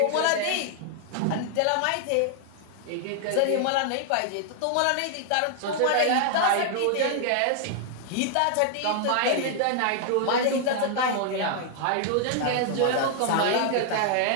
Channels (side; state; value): both; different; correlation 0.00